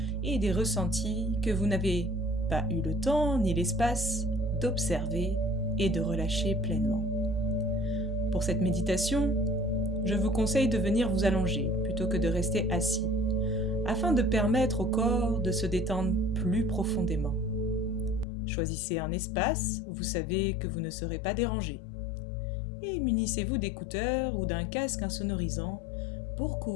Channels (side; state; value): right; drops out; at 18.2 s